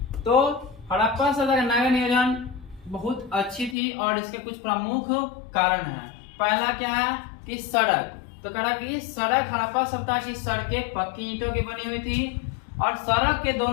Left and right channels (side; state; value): right; drops out; at 3.8 s